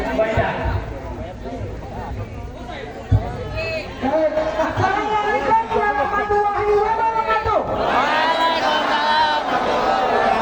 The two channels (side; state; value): both; identical; correlation 1.00